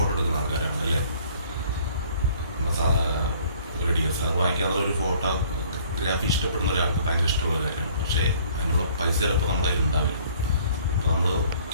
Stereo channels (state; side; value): inverted; both; correlation -0.56